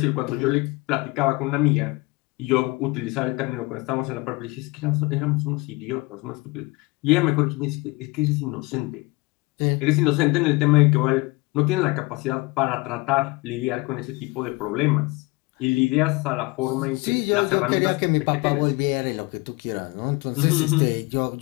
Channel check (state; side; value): quieter; right; 24.6 dB